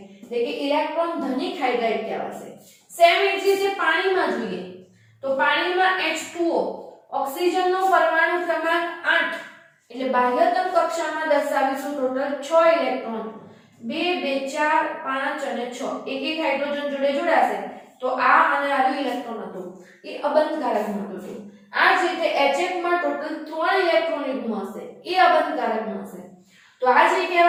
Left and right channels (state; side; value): identical; both; correlation 1.00